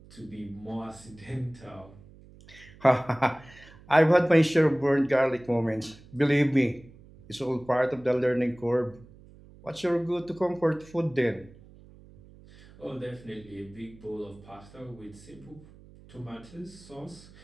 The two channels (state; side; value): noise; right; hum, 22 dB below the sound